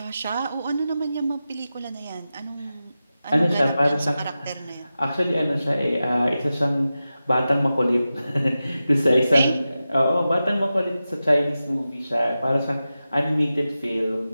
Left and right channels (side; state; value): both; inverted; correlation -0.93